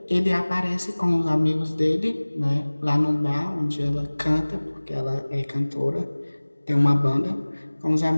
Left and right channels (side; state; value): both; inverted; correlation -1.00